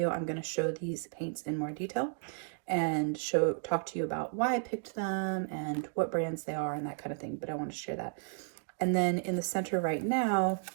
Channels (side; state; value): left; silent; digital silence